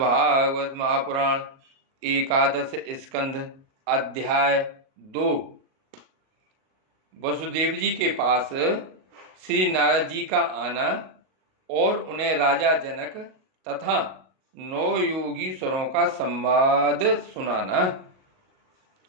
महापुराण एकादश स्कंध अध्याय 2। वसुदेव जी के पास श्री नारद जी का आना और उन्हें राजा जनक तथा 9 योगीश्वरों का संवाद सुनाना।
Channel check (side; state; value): left; late; 38 ms